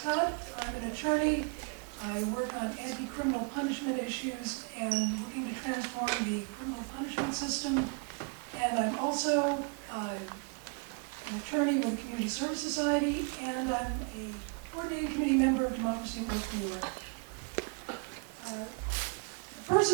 I'm an attorney. I work on anti-criminal punishment issues and looking to transform the criminal punishment system. And I'm also an attorney with the Community Service Society, and I'm a coordinating committee member of Democracy at Work New York. The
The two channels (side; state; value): left; quieter; 35.3 dB